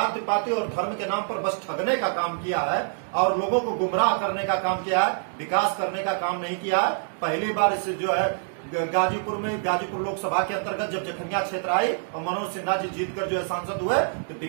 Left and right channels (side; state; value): left; silent; digital silence